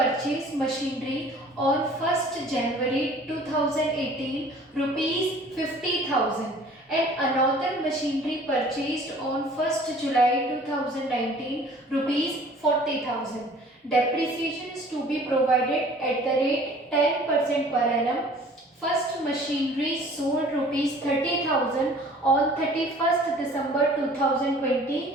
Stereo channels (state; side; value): normal; both; correlation 0.50